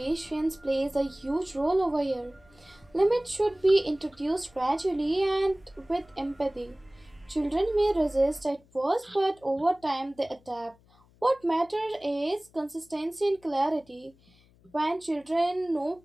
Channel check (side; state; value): left; noise; hum, 30 dB below the sound